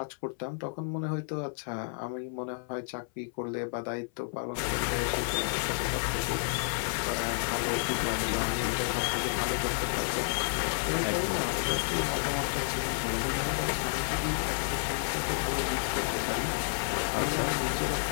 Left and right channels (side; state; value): right; silent; 56 dB below the other